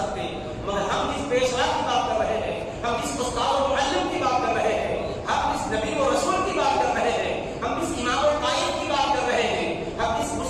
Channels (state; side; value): identical; both; correlation 1.00